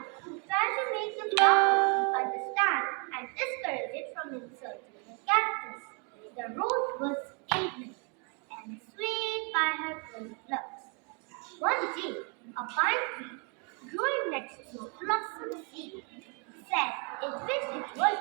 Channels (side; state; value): left; quieter; 36.2 dB